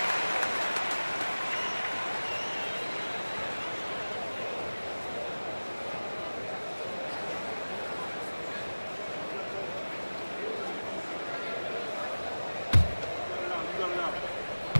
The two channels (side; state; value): both; inverted; correlation -1.00